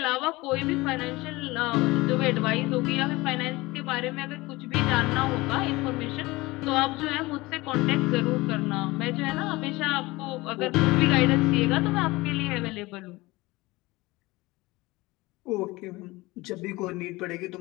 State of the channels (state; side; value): quieter; right; 21.2 dB